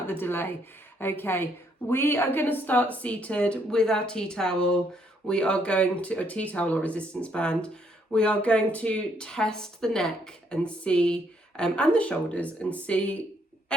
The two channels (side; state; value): both; normal; correlation 0.71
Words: the delay. Okay, we are going to start seated with our tea towel. We are going to, a tea towel or resistance band. We are going to test the neck and see, and the shoulders, and see